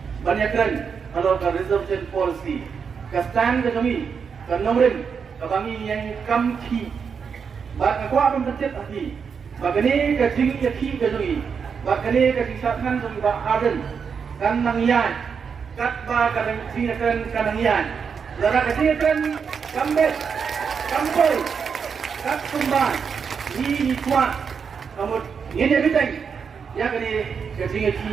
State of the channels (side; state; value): left; quieter; 6.3 dB